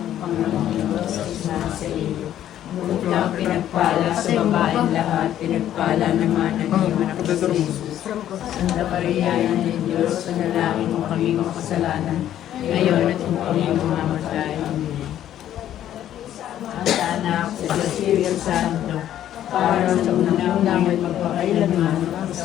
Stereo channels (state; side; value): quieter; right; 11.5 dB